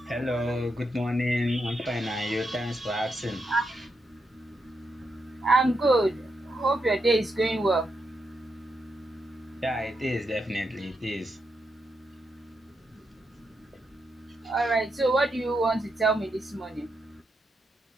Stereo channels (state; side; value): normal; both; correlation 0.83